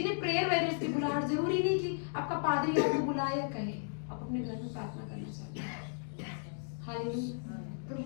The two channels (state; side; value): silent; right; digital silence